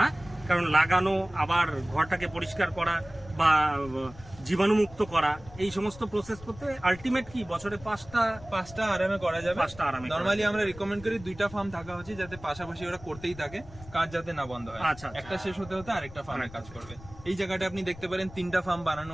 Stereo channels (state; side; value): noise; left; rumble, 18 dB below the sound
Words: কারণ লাগানো, আবার ঘরটাকে পরিষ্কার করা বা জীবাণুমুক্ত করা, এই সমস্ত প্রসেস করতে আলটিমেট কি বছরে 5টা আরামে করা যাবে। 5টা আরামে নরমালি আমরা রিকমেন্ড করি 2টা ফার্ম থাকা উচিত, যাতে পাশাপাশি ওরা করতেই থাকে, কাজ যাতে না বন্ধ হয়। আচ্ছা, একটা শেষ হতে হতে আরেকটা ফার্মে কাজ করবে। এই জায়গাটা আপনি দেখতে পারেন 3টা ফার্ম